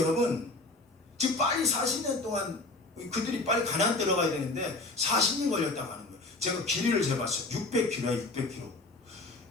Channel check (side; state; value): right; quieter; 3.1 dB